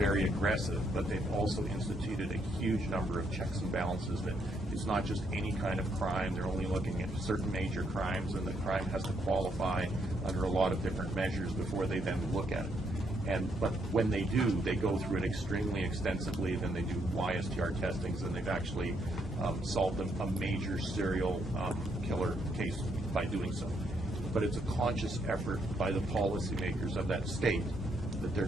aggressive, but they've also instituted a huge number of checks and balances that it's not just any kind of crime. They're only looking at certain major crimes, and the crime has to qualify under a lot of different measures before they then look at it. But when they do, they go through it extremely extensively. Then they do YSTR testings, and they've actually solved a major serial killer case by doing so. But it's a conscious effort by the policymakers of that state that they're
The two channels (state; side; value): normal; both; correlation 0.75